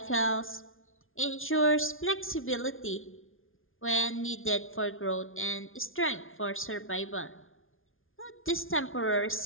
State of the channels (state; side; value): late; right; 0.59 ms